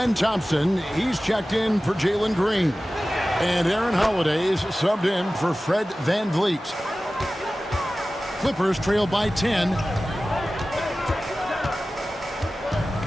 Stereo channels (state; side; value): normal; both; correlation 0.96